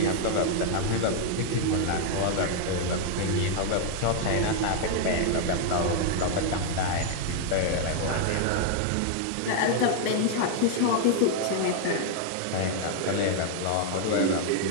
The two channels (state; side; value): different; both; correlation 0.00